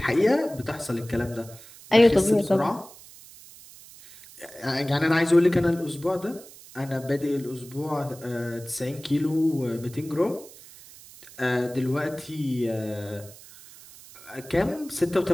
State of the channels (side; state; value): right; noise; hiss, 20 dB below the sound